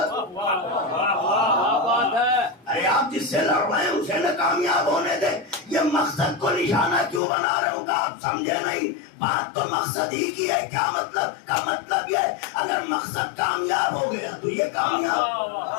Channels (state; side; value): drops out; right; at 7.2 s